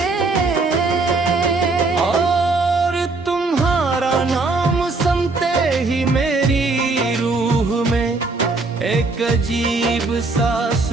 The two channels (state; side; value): quieter; left; 3.6 dB